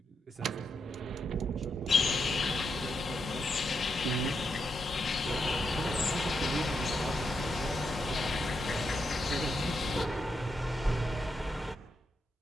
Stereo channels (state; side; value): normal; both; correlation 0.83